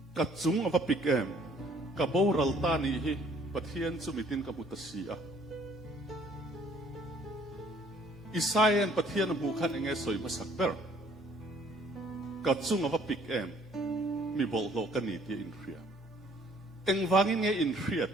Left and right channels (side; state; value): right; noise; hum, 28 dB below the sound